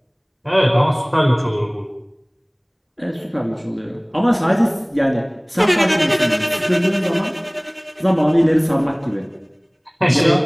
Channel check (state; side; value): identical; both; correlation 1.00